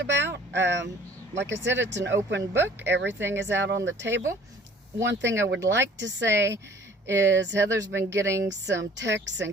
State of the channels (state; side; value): normal; both; correlation 0.52